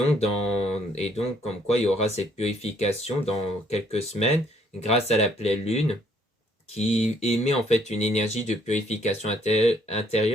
comme quoi il y aura cette purification dans quelques semaines grâce à la pleine lune qui émet en fait une énergie de purification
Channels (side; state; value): both; normal; correlation 0.65